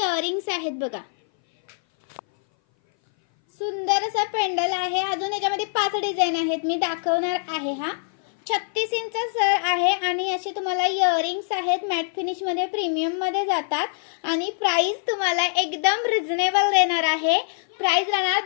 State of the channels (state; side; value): silent; right; 58 dB below the other